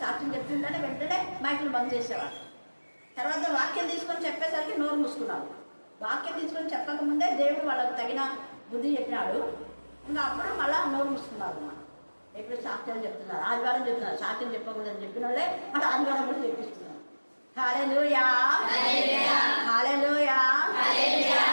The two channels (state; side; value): inverted; both; correlation -1.00